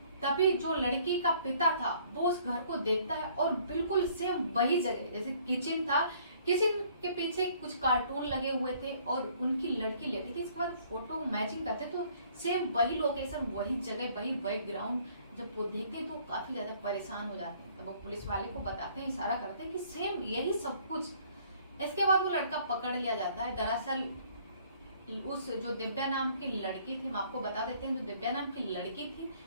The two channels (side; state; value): both; inverted; correlation -0.60